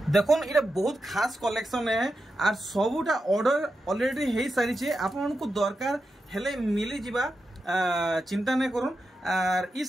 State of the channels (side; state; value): both; normal; correlation 0.89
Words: देखुन इटा बहुत खास कलेक्शन है आर सबुटा ऑर्डर ऑलरेडी हे सारी छे आपन को दरकार हेले मिली जिबा चिंता नै करूं। आर ई